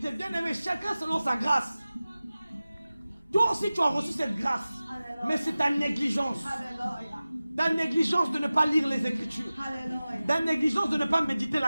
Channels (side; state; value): both; inverted; correlation -0.97